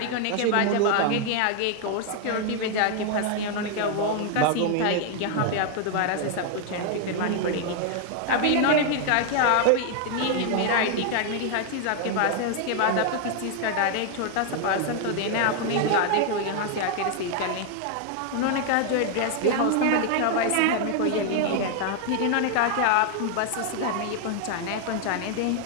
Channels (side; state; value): both; different; correlation 0.00